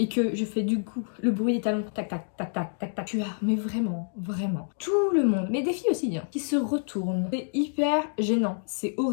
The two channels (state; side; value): silent; right; digital silence